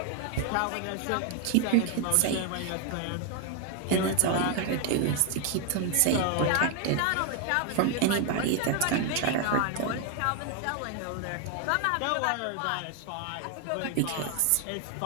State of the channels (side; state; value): both; different; correlation 0.01